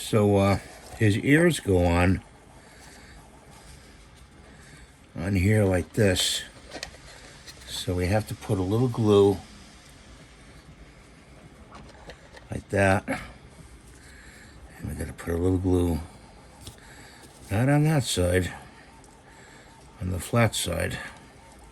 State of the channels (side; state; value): both; identical; correlation 1.00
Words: his ears go on here like this. So we have to put a little glue like that. And we gotta put a little glue, not on that side, on the flat side.